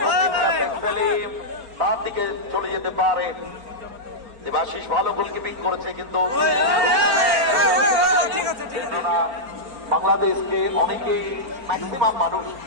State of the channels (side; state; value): left; late; 4.4 ms